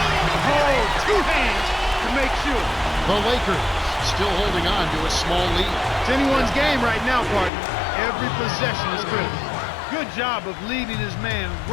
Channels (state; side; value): drops out; right; at 7.5 s